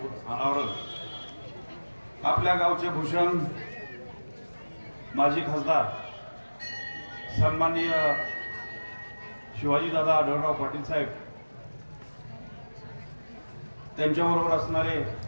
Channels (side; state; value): both; inverted; correlation -1.00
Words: अनावरण आपल्या गावचे भूषण माजी खासदार सन्माननीय शिवाजीदादा आढळराव पाटील साहेब त्यांच्याबरोबर असणारे